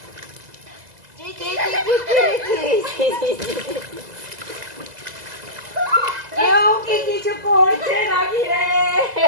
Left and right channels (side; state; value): left; late; 2.0 ms